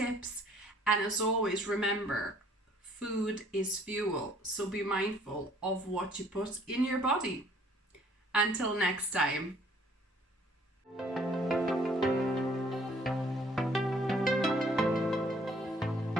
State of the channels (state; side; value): normal; both; correlation 0.59